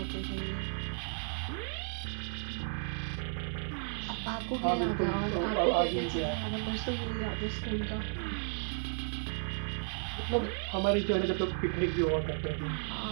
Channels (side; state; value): left; silent; 55 dB below the other